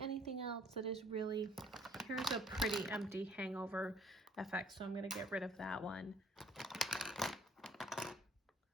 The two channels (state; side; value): normal; both; correlation 0.60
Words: else that is really, here's a pretty empty hangover effect, so I'm gonna get rid of that one.